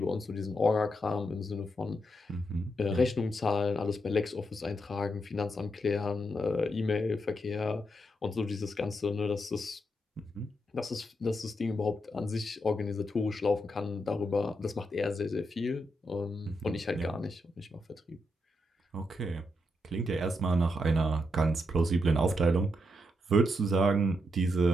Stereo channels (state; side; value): normal; both; correlation 0.82